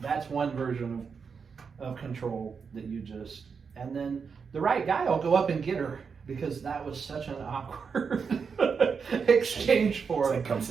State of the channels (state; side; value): quieter; left; 5.8 dB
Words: one version of control that and then the right guy will go up and get her because that was such an awkward exchange for him. Come